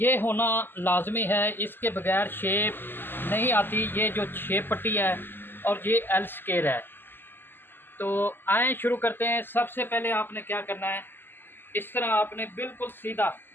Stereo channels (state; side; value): late; right; 0.096 ms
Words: होना लाजमी है, इसके बगैर शेप नहीं आती। ये जो शेप पट्टी है और ये एल स्केयर है। तो आए शुरू करते हैं। सबसे पहले आपने क्या करना है, इस तरह आपने बिल्कुल सीधा